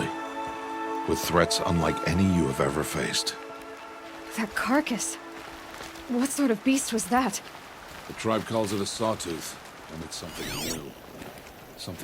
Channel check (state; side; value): identical; both; correlation 1.00